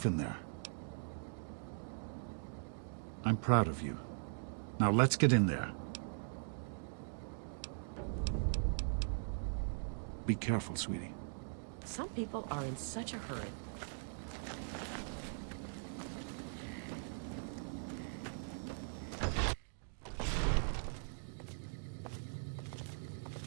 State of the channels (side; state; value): left; silent; digital silence